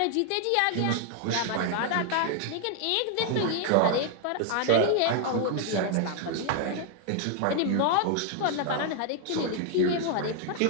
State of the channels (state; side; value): different; both; correlation 0.00